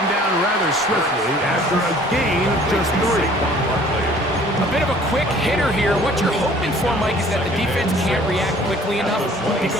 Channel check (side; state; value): both; normal; correlation 0.53